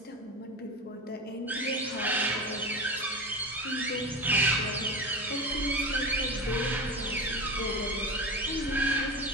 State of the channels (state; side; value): normal; both; correlation 0.25